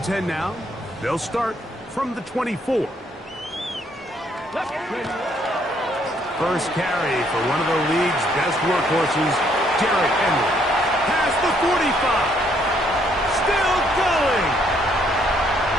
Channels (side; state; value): both; normal; correlation 0.69